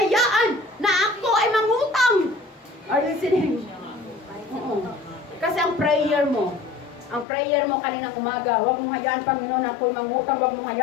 na ako ay mangutang. Are you listening? Oo. Kasi ang prayer mo, mo kaninang umaga, huwag mong hayaan, Panginoon, ako'y mangutang, huwag mong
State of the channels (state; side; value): drops out; right; at 7.2 s